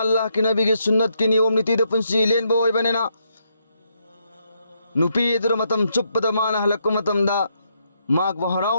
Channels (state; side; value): inverted; both; correlation -0.77